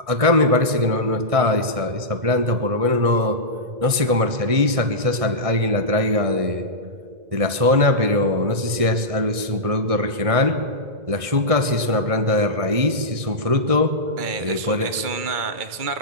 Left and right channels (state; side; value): late; left; 1.6 ms